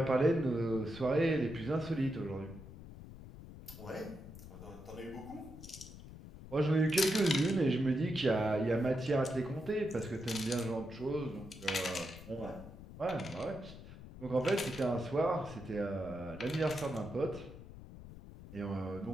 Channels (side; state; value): left; noise; rumble, 15 dB below the sound